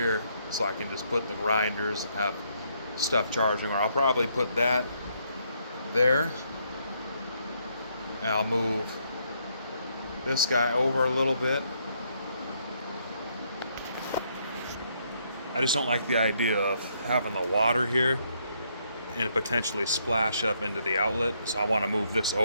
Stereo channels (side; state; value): both; inverted; correlation -0.73